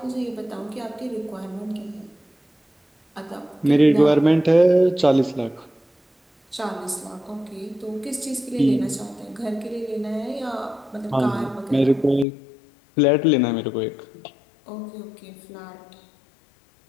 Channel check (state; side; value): drops out; right; at 12.2 s